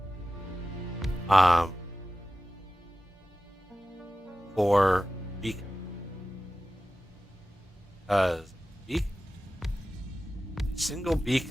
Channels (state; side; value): normal; both; correlation 0.95